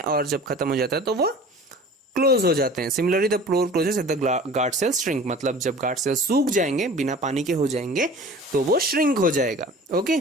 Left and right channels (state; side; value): normal; both; correlation 0.43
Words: और जब खत्म हो जाता है तो वो क्लोज हो जाते हैं। Similarly the pore closes if the guard cells shrink. मतलब जब guard cells सूख जाएंगे, बिना पानी के हो जाएंगे, तो वो shrink हो जाएगा।